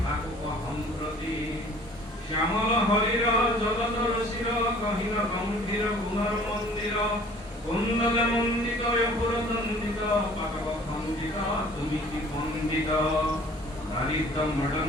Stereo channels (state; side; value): normal; both; correlation 0.51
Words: সম্প্রতি শ্যামল হরির জগত রসির কহিল গম্ভীর গুণর মন্দির কুণ্ডলে মন্দিত অপুর দণ্ডিত পাতক খণ্ডিত তুমি কি পণ্ডিত দারিদ্র